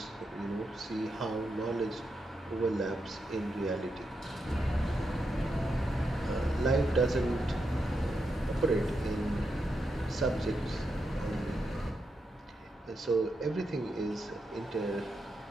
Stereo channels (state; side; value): normal; both; correlation 0.85